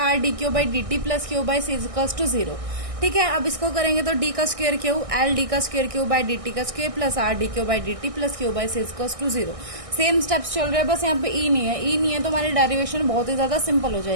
d q by d t plus q by c equals to 0। ठीक है, अब इसको करेंगे तो डी का स्क्वायर क्यू, एल डी का square q by d t का square plus are d q by d t plus q by c equals to 0। Same steps चल रहे हैं, बस यहाँ पे ई नहीं है। ई नहीं है तो हमारी डेरिवेशन बहुत ही ज्यादा सिंपल हो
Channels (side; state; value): left; late; 1.6 ms